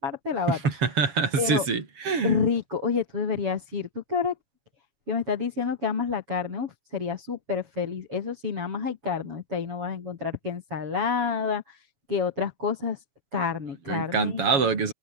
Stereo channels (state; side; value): late; left; 7.1 ms